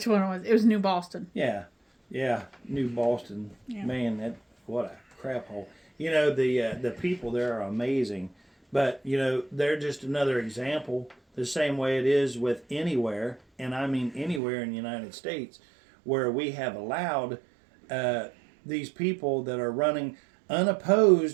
one it was. It was New Boston. Yeah, New Boston. Yeah. Man, what a crap hole. The people there are amazing. But, they're just another example, the same way it is with anywhere, and I mean anywhere in the United States, where we have allowed these people that are running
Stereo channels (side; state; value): left; drops out; at 14.4 s